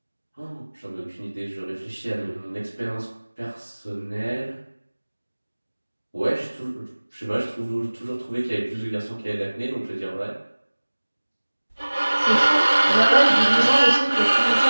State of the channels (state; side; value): inverted; both; correlation -1.00